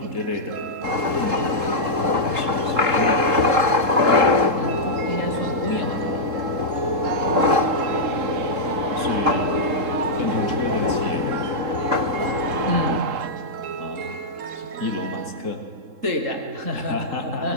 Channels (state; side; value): late; left; 3.7 ms